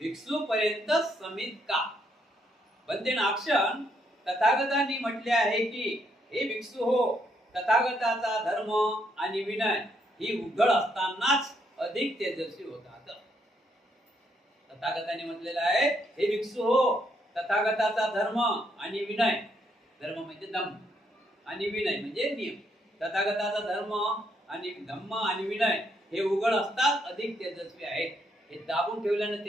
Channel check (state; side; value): normal; both; correlation 0.74